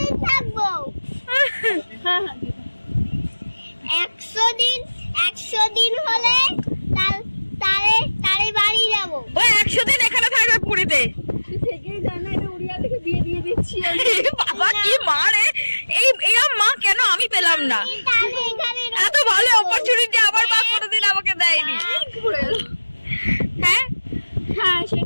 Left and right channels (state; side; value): inverted; both; correlation -1.00